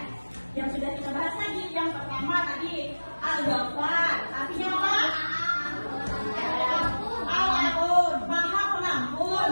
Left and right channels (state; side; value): inverted; both; correlation -1.00